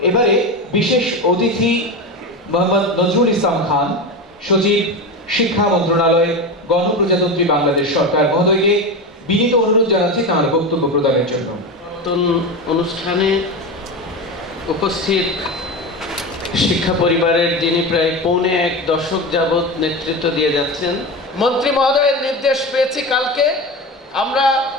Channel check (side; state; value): both; normal; correlation 0.22